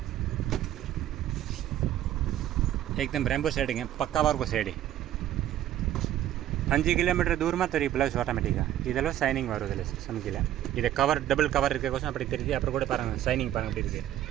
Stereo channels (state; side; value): quieter; left; 12.5 dB